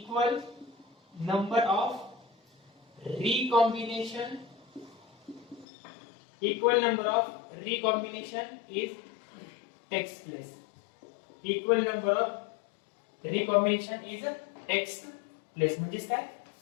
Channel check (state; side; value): drops out; right; at 5.7 s